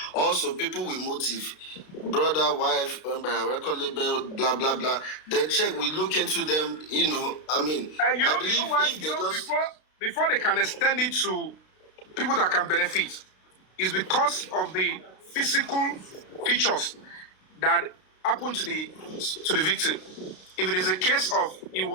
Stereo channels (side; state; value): right; late; 32 ms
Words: Also, people with motive, brother, wife, record label, blah, blah, blah. Then check, we look into them, you know, I mean, I believe if they just... Before they can extend it to people that can benefit, is because of the physical features that happened to the victim. If it is a case of he